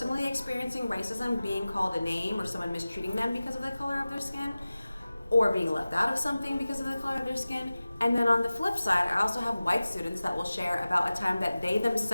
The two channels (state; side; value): inverted; both; correlation -0.97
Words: experiencing racism, being called a name or someone mistreating them because of the color of their skin, or being left out of something because of the color of their skin. And then on the flip side, I also have white students that will share about a time that they